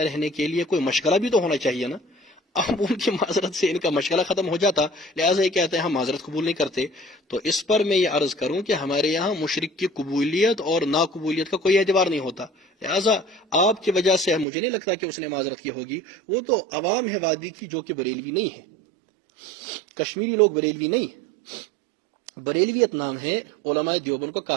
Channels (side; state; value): left; drops out; at 14.5 s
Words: کے لیے کوئی مشغلہ بھی تو ہونا چاہیے نا۔ اب ان کی معذرت سے ان کا مشغلہ ختم ہو جاتا، لہٰذا یہ کہتے ہیں ہم معذرت قبول نہیں کرتے۔ تو اس پر میں یہ عرض کروں کہ ہمارے یہاں مشرک کی قبولیت اور ناقبولیت کا کوئی اعتبار نہیں ہوتا، لہٰذا آپ کی وجہ سے مجھے نہیں لگتا کہ اس نے معذرت کی ہوگی۔ وہ تو عوام ہے وادی کی جو کہ بریلوی نہیں ہے، کشمیری لوگ بریلوی نہیں۔ بریلویت نام ہے علماء دیوبند کو